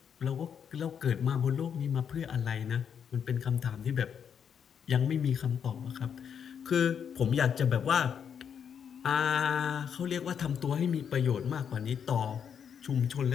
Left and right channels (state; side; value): quieter; right; 7.7 dB